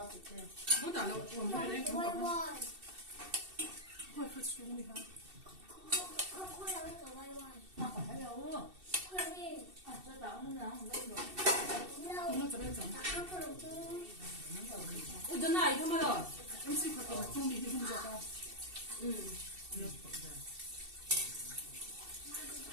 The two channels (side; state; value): left; late; 2.7 ms